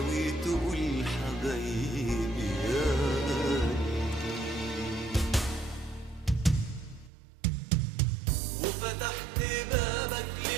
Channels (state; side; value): drops out; left; at 7.1 s